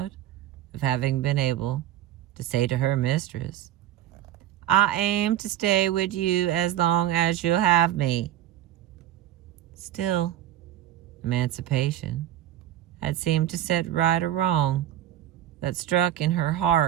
of having been able to say to her mistress, "I aim to stay with you as long as you'll have me." Still, emancipation had seemed to set right a wrong that struck in her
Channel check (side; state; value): left; quieter; 12.2 dB